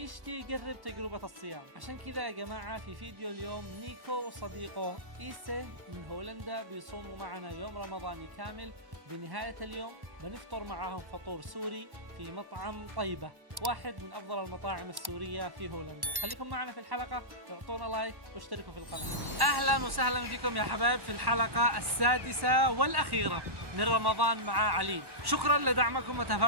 يجرب تجربة الصيام. عشان كذا يا جماعة في فيديو اليوم نيكو وصديقه إيسي من هولندا بيصوموا معنا يوم رمضاني كامل. بنهاية اليوم بنفطر معهم فطور سوري في مطعم طيبة، واحد من أفضل المطاعم السورية في هولندا. خليكم معنا في الحلقة، اعطونا لايك واشتركوا في القناة. أهلا وسهلا فيكم يا حبايب في الحلقة السادسة والأخيرة من رمضان مع عليم. شكرا لدعمكم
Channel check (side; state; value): left; late; 1.1 ms